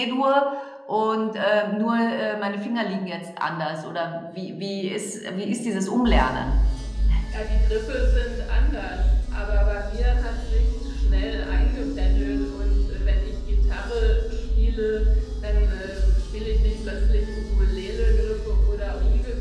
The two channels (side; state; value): both; identical; correlation 1.00